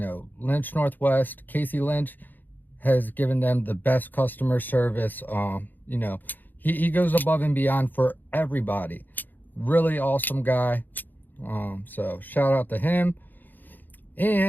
Lynch Northwest, Casey Lynch has given them the best customer service. You know, he goes above and beyond for everybody. Really awesome guy. So shout out to him.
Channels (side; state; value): right; late; 0.087 ms